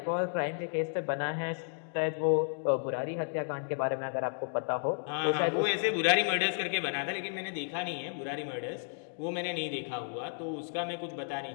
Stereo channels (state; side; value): silent; right; digital silence